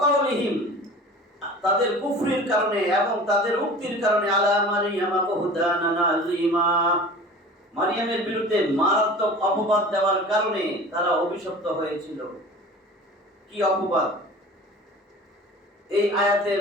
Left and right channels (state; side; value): normal; both; correlation 0.40